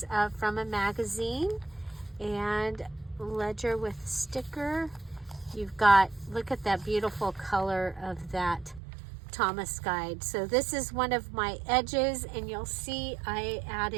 from a magazine, and ledger with sticker. You've got, look at that beautiful color of that Thomas guide. So this is one of my edges, and you'll see I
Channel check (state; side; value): drops out; left; at 8.8 s